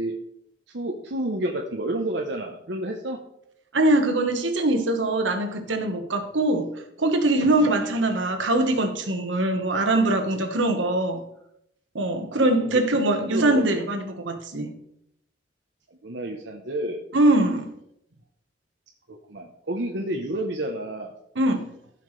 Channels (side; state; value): both; normal; correlation 0.32